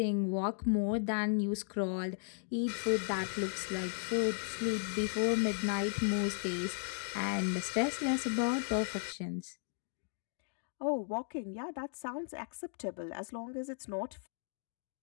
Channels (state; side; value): silent; right; digital silence